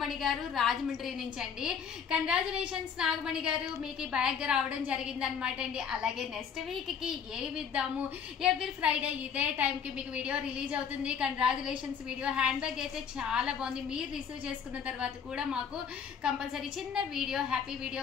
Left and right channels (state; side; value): quieter; right; 7.1 dB